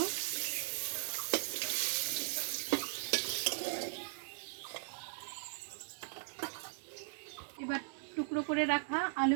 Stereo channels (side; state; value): left; silent; 52 dB below the other